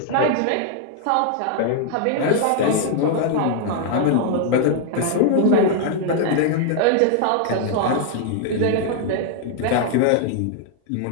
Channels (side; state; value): both; different; correlation 0.00